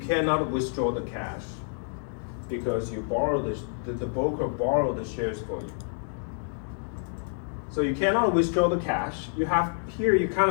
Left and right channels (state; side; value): silent; right; digital silence